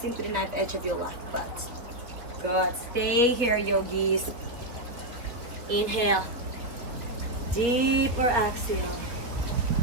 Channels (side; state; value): left; late; 3.8 ms